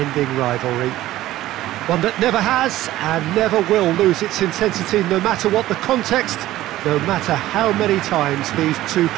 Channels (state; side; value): quieter; left; 15.2 dB